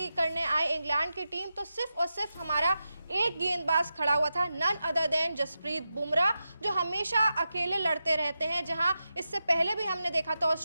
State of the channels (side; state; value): both; inverted; correlation -0.90